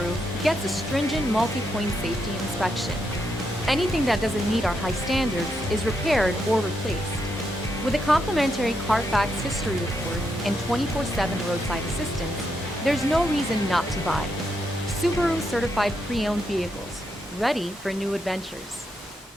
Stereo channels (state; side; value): normal; both; correlation 0.81